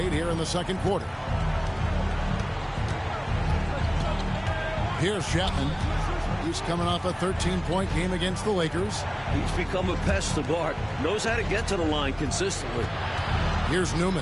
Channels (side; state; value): both; identical; correlation 1.00